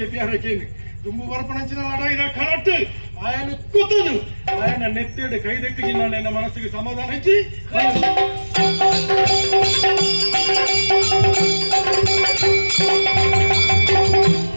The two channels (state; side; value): inverted; both; correlation -1.00